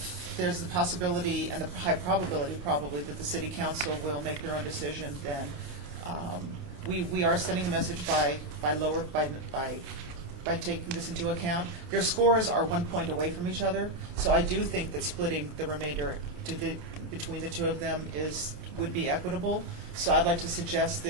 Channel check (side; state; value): left; late; 29 ms